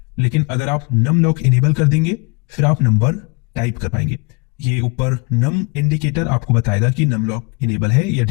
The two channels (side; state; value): right; quieter; 30.7 dB